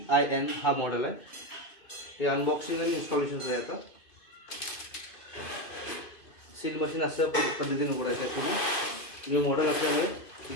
हा मॉडेल आहे. हे अनबॉक्सिंग आणि इन्स्टॉलेशन आहे. आता सील मशीन असं पद्धतीने उघडायचं आहे. पूर्ण न्यू मॉडेल असल्यामुळे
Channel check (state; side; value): late; right; 2.5 ms